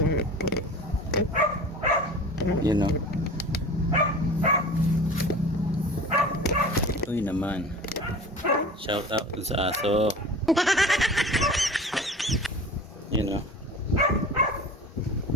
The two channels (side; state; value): both; normal; correlation 0.38